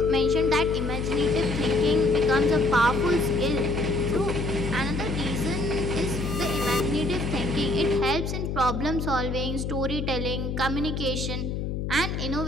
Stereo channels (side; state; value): left; noise; hum, 3 dB below the sound